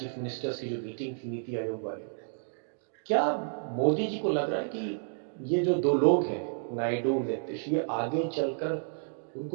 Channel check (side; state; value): left; silent; digital silence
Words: मिनिस्टर्स की जो मीटिंग थी नीति आयोग वाली। क्या मोदी जी को लग रहा है कि ये जो 2 लोग हैं, नायडू, नीतीश, ये आगे चलकर